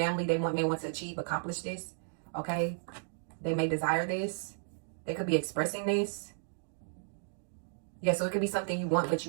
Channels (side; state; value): left; silent; digital silence